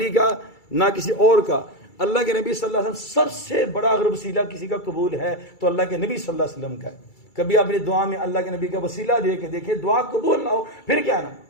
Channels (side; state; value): right; late; 2.3 ms